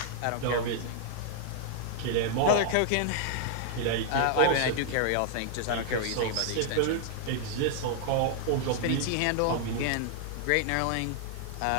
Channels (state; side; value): different; both; correlation -0.01